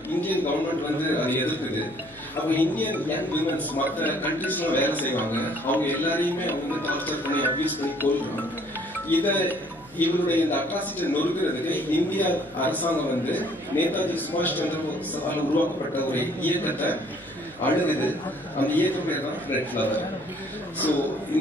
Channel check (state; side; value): noise; left; hum, 26 dB below the sound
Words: இந்தியன் கவர்மெண்ட் வந்து அதை எதிர்க்குது. அப்போ இந்தியன் யங் விமன்ஸ் மற்ற கண்ட்ரீஸ்லாம் வேலை செய்வாங்க, அவங்க எல்லாரையுமே அவங்க வந்து டார்ச்சர் பண்ணி அபியூஸ் பண்ணி கொள்றாங்க. இவருடைய இந்த அட்ராசிட்டி நொறுக்கிறதுக்கு இந்திய அரசாங்கம் வந்து நேதாஜி சுபாஷ் சந்திர போஸால் உருவாக்கப்பட்ட ஒரு இயக்கத்தை அணுகுது. அந்த இயக்கம் பேர் தான் ரெட் ஃபிளவர். ஸோ